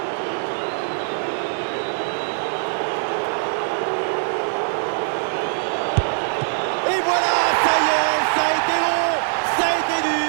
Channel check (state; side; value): silent; left; 64 dB below the other